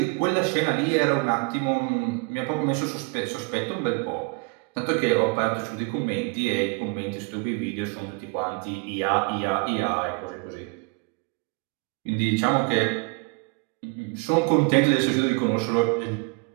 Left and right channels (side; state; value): left; quieter; 31.3 dB